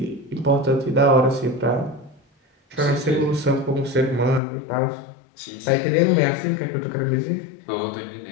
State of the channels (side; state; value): right; drops out; at 4.4 s